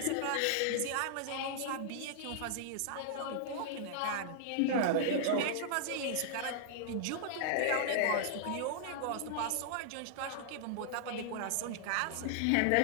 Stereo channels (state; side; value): different; both; correlation -0.01